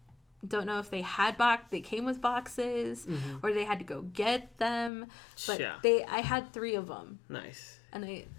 don't know if they had they came with boxes or they had to go get them, but I had 3 of them. Nice. And I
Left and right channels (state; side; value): drops out; right; at 4.9 s